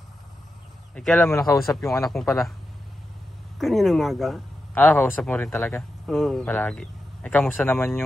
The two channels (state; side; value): normal; both; correlation 0.89